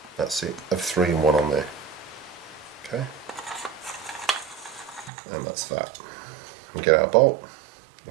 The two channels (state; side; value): drops out; left; at 5.1 s